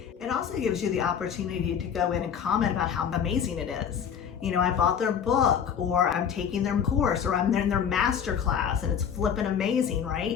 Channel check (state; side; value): quieter; right; 7.9 dB